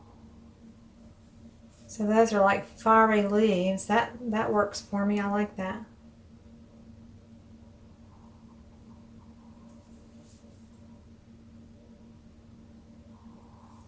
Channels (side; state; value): both; identical; correlation 1.00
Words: So those are like fiery leaves. That works for me. I like that.